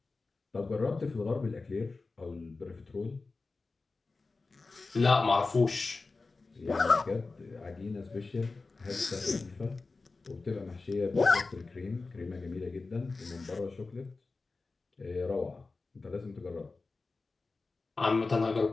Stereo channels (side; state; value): right; quieter; 3.8 dB